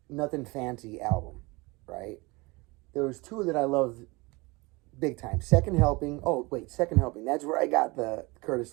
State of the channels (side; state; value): left; quieter; 24.9 dB